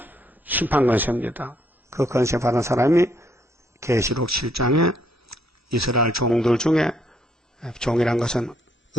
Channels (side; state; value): both; normal; correlation 0.70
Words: 심판 권세입니다. 그 권세 받은 사람이 계시록 7장에 이스라엘 종들 중에 종이란 것은